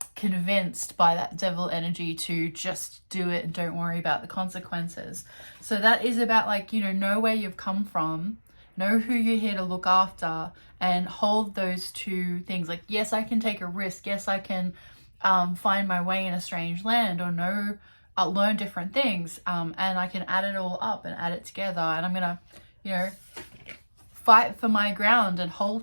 convinced by that devil energy to just do it and don't worry about the consequences. So that is about know where you've come from, know who you're here to look after, and hold those two things. Yes, I can take a risk. Yes, I can find my way in a strange land, or learn different things. And I can add it all up and add it together. And I'm going to, fight for my ground and hold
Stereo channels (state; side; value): inverted; both; correlation -1.00